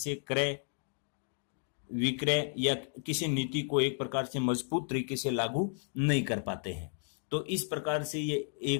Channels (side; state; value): right; silent; 56 dB below the other